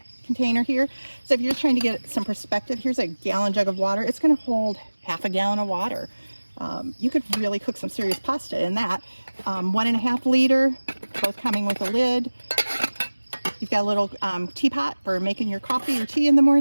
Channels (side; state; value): both; inverted; correlation -1.00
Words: container here. So if you're just trying to get some perspective, here's a gallon jug of water. It's going to hold half a gallon of water. You could really cook some serious pasta in that. 1.5 liter, both coming with a lid. You've got a little teapot for making your coffee or tea in the